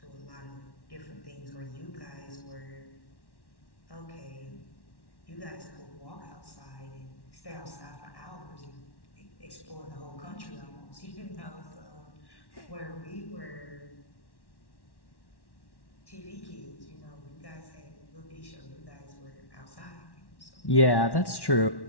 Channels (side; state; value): right; late; 1.1 ms